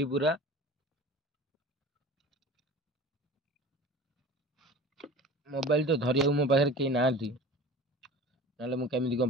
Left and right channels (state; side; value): normal; both; correlation 0.39